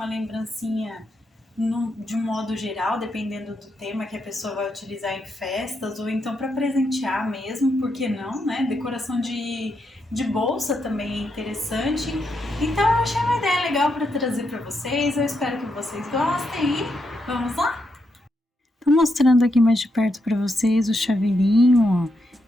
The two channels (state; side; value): normal; both; correlation 0.81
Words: lembrancinha de um modo geral, dependendo do tema que a pessoa vai utilizar em festas, ou então para presentear mesmo, por que não, né? Decoração de bolsa também é interessante. Então eu achei uma ideia legal para trazer para vocês, eu espero que vocês gostem e vamos lá? Tô mostrando aqui mais de perto para vocês o chaveirinho, ó.